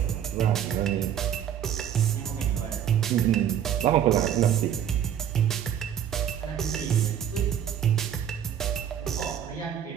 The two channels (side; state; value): left; quieter; 9.6 dB